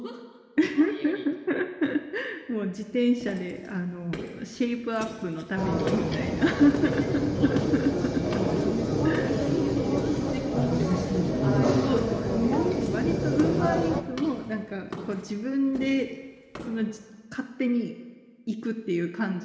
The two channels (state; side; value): identical; both; correlation 1.00